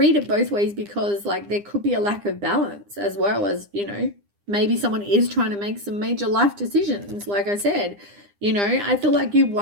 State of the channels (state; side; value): late; left; 9.9 ms